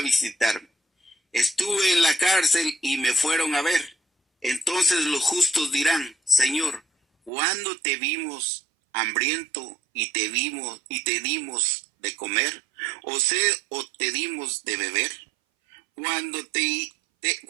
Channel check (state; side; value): drops out; left; at 7.3 s